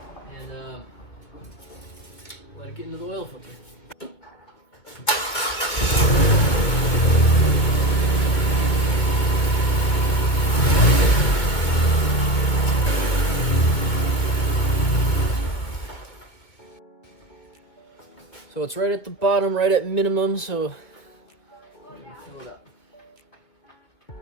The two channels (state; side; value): late; right; 2.3 ms